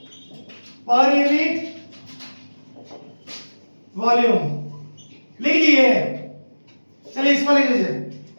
per unit volume। लिख लिए। चलिए इसको लिख लीजिए,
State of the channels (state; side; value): inverted; both; correlation -1.00